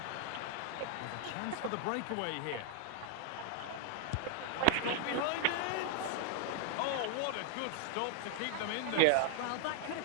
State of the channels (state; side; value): different; both; correlation 0.00